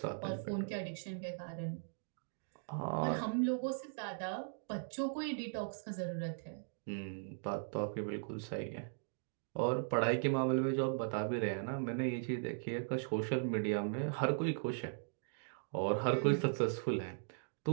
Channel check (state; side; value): silent; left; digital silence